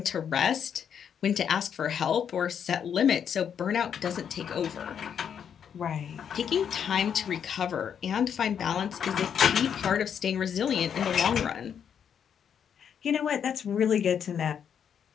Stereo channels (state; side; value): quieter; right; 8.0 dB